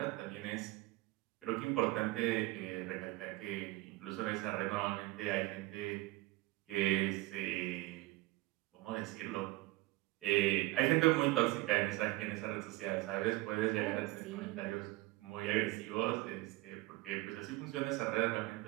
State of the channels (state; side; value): quieter; left; 20.3 dB